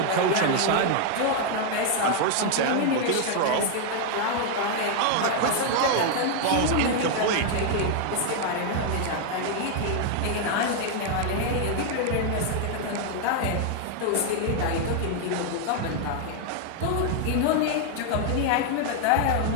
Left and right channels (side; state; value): both; different; correlation 0.00